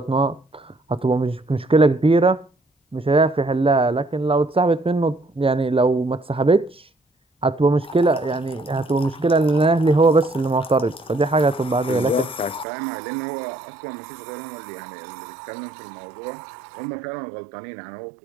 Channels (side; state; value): left; drops out; at 12.7 s